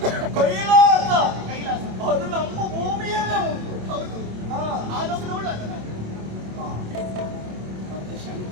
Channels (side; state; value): left; late; 27 ms